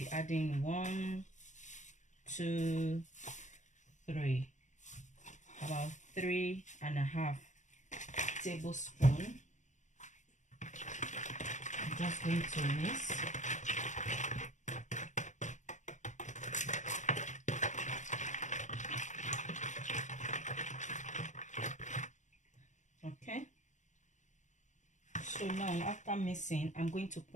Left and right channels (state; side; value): late; right; 0.35 ms